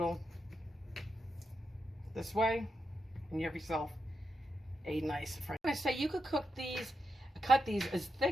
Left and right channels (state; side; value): normal; both; correlation 0.86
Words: this way, and you have yourself a nice french. I'm gonna say you could cook these, cut these as